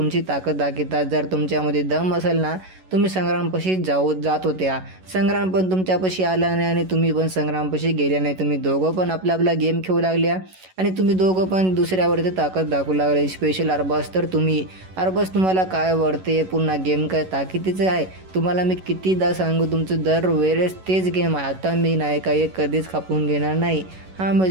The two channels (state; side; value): late; left; 11 ms